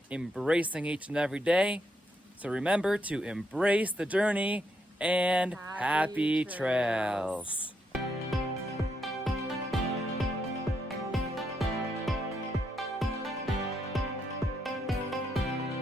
embracing each and every day. So remember to embrace the journey and happy Happy trails.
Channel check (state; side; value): normal; both; correlation 0.78